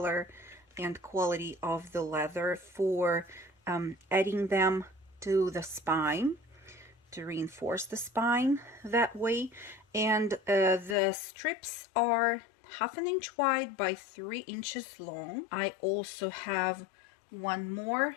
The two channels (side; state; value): right; drops out; at 11.0 s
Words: and quality of the leather for adding them to the spine, to reinforce the spine that way. And the strips are 1/2 inch wide by 3 inches long. I also have one more